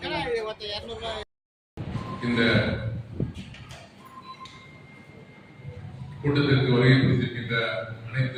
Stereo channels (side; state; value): both; identical; correlation 1.00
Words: கூட்டத்திற்கு வருகை புரிந்திருக்கின்ற